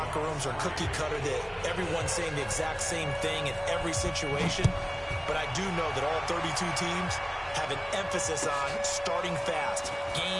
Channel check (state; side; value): identical; both; correlation 1.00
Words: rooms are cookie cutter, that everyone's saying the exact same thing in every situation. But I do know that all 32 teams have an emphasis on starting fast.